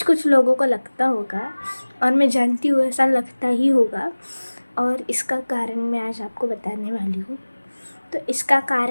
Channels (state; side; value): inverted; both; correlation -1.00